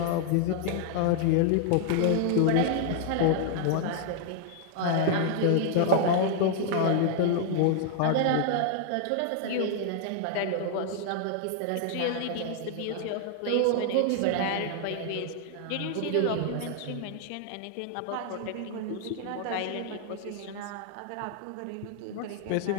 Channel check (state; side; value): different; both; correlation 0.00